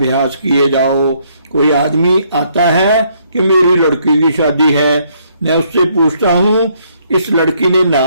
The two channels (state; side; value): inverted; both; correlation -0.70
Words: किए जाओ। कोई आदमी आता है कि मेरी लड़की की शादी है, मैं उससे पूछता हूँ इस लड़की ने